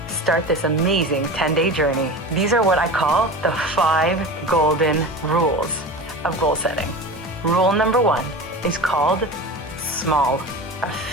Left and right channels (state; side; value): normal; both; correlation 0.31